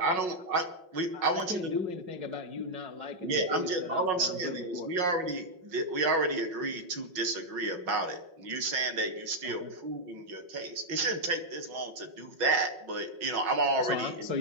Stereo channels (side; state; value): left; late; 5.5 ms